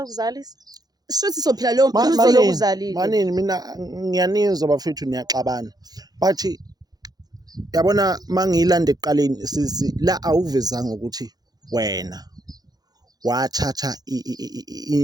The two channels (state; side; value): late; left; 0.19 ms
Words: ukuzalisa shuthi sophila leyo mpilo lokuzalile manini mina ngiyanizwa bafethu niyaxabana but yabona mangiyilanda ekuqaleni sisi la awuvezanga ukuthi wena wathatha